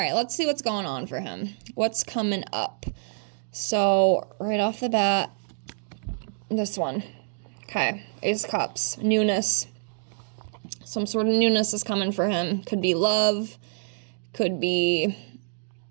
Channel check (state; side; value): silent; left; digital silence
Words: let's see what's going on for him. What's coming up? So, right off the bat, this one. Okay, Ace of Cups. Newness. Some sort of newness is coming for him. Could be love. Could be